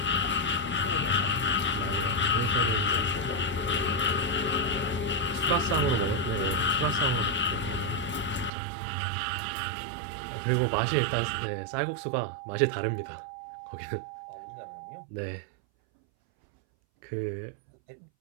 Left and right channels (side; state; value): left; drops out; at 8.5 s